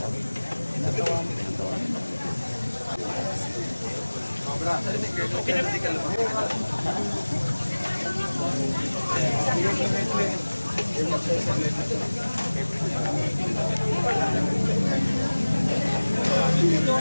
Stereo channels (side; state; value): both; inverted; correlation -1.00